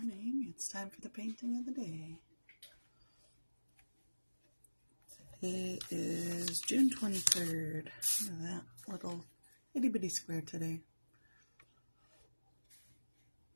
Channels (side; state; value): both; inverted; correlation -1.00